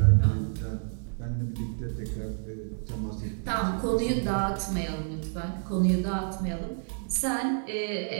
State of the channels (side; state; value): left; silent; digital silence